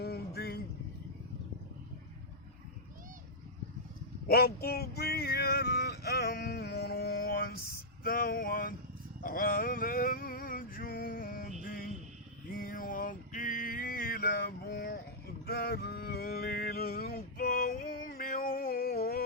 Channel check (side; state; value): both; normal; correlation -0.09